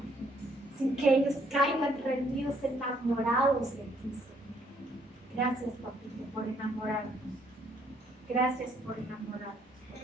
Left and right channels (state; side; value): normal; both; correlation 0.68